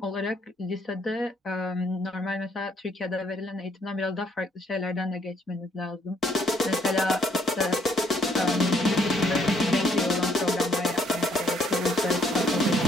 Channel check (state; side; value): normal; both; correlation 0.68